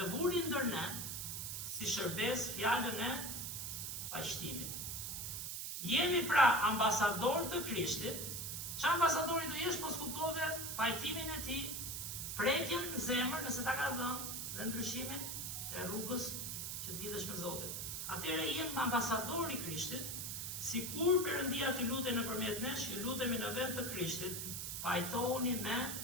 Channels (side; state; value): right; noise; hiss, 4 dB below the sound